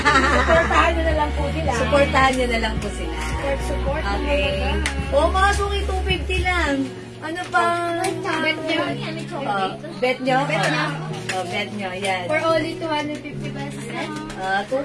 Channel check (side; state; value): both; identical; correlation 1.00